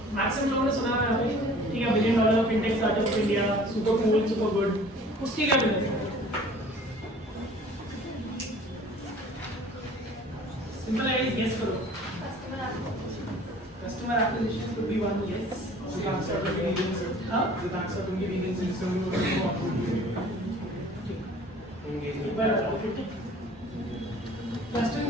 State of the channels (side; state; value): both; normal; correlation 0.49